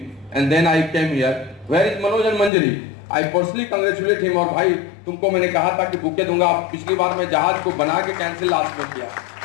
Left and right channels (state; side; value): drops out; right; at 2.5 s